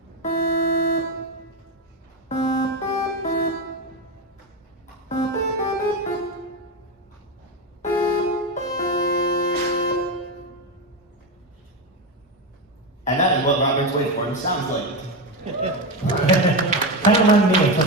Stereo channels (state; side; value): normal; both; correlation 0.13